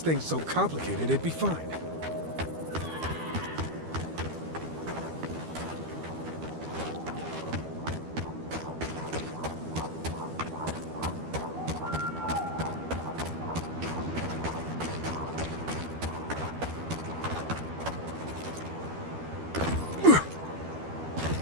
thing so complicated, it'd be fine.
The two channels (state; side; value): late; left; 12 ms